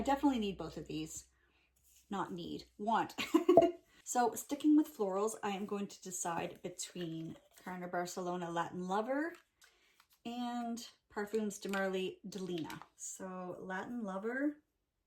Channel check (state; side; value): identical; both; correlation 1.00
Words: definitely need both of these. Not need, want. So sticking with florals, I am going to decide between Carner Barcelona Latin Lover and Perfumes de Marly Delina. So Latin Lover,